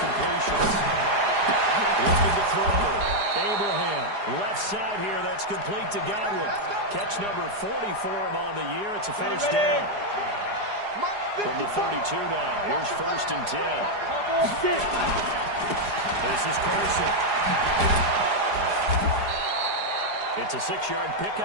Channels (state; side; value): late; left; 4.9 ms